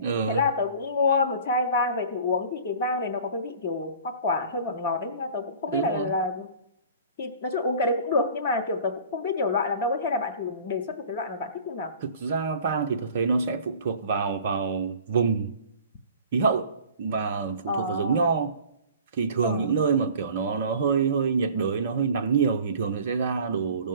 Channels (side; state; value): both; inverted; correlation -0.45